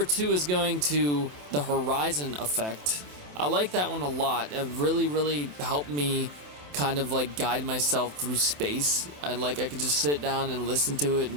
two is going to the Horizon Effect. I like that one a lot. It really, really helped me kind of like guide myself through space. I could just sit down and listen to it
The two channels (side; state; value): left; late; 27 ms